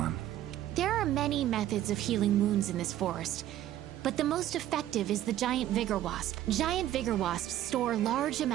There are many methods of healing wounds in this forest, but the most effective is the giant vigor wasp. Giant vigor wasps store large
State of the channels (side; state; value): left; quieter; 12.9 dB